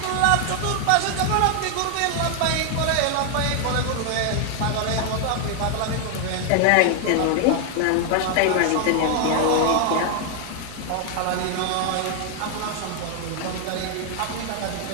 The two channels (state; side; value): different; both; correlation 0.00